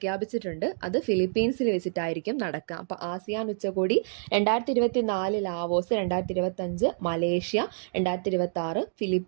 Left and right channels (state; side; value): silent; left; digital silence